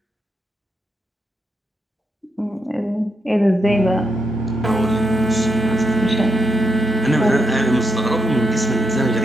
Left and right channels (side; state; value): both; normal; correlation 0.83